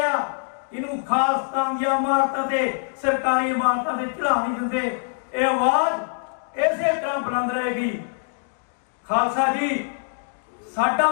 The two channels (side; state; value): right; silent; digital silence